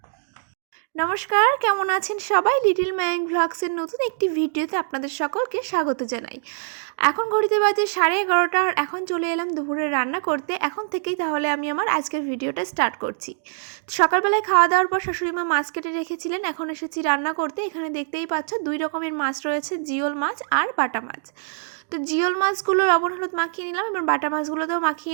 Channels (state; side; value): silent; left; digital silence